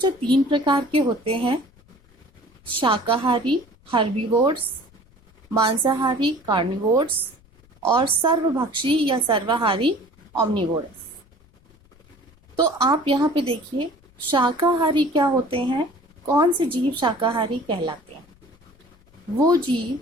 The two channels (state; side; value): noise; left; rumble, 29 dB below the sound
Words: 3 प्रकार के होते हैं, शाकाहारी हर्बीवोर्स, मांसाहारी कार्निवोर्स और सर्वभक्षी या सर्वाहारी ओमनिवोरस। तो आप यहाँ पे देखिए, शाकाहारी क्या होते हैं? कौन से जीव शाकाहारी कहलाते हैं? वो जीव